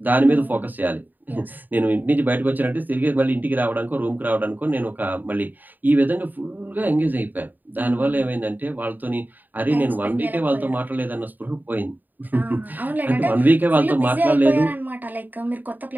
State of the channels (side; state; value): left; late; 0.088 ms